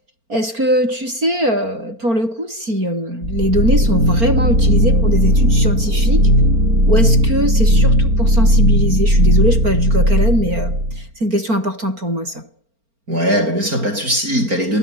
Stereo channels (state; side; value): late; left; 4.4 ms